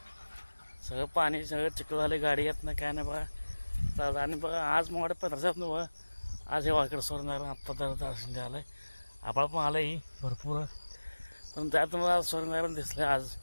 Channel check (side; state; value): both; inverted; correlation -1.00